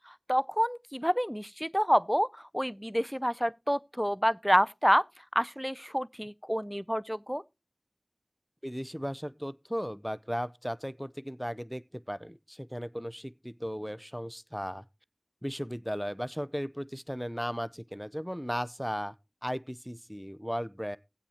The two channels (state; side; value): identical; both; correlation 1.00